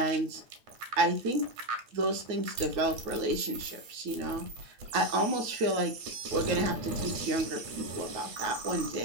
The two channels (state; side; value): late; left; 9.3 ms